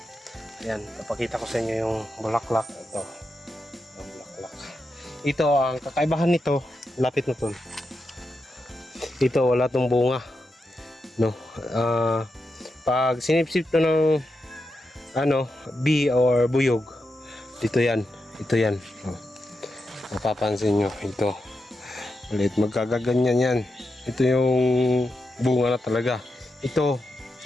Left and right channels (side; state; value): both; normal; correlation 0.87